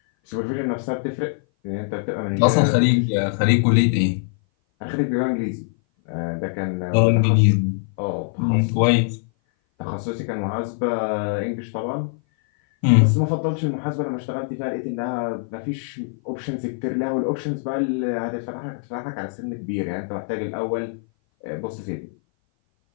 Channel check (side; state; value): right; silent; 57 dB below the other